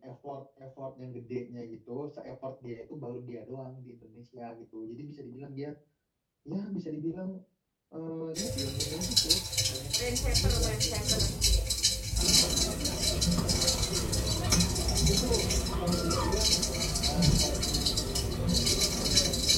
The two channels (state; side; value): identical; both; correlation 1.00